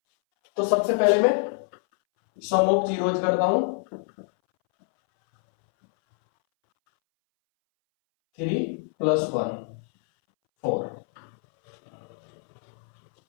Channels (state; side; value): silent; right; 62 dB below the other